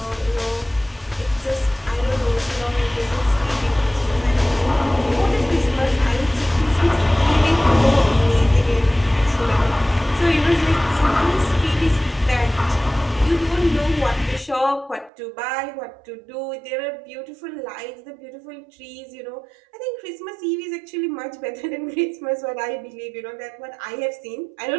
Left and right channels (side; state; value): left; drops out; at 15.1 s